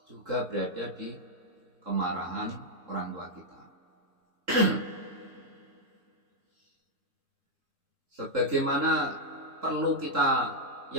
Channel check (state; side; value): late; left; 3.7 ms